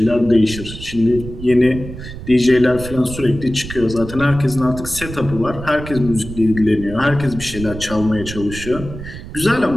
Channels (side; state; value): right; noise; rumble, 11 dB below the sound